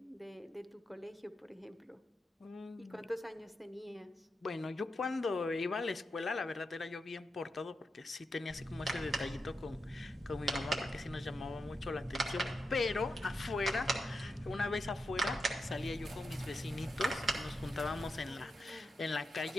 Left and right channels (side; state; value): both; normal; correlation 0.87